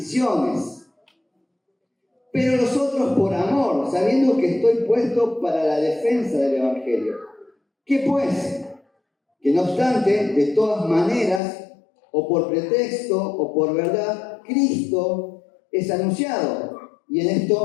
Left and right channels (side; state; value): right; drops out; at 11.4 s